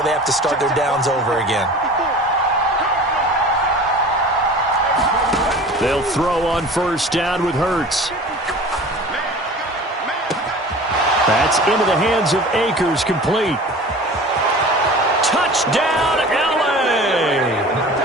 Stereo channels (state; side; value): normal; both; correlation 0.40